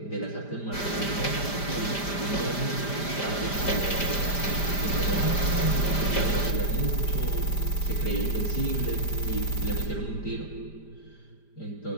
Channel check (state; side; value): late; right; 5.0 ms